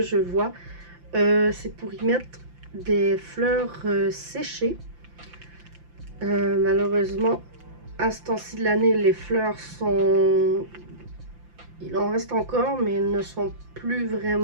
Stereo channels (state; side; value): late; left; 5.8 ms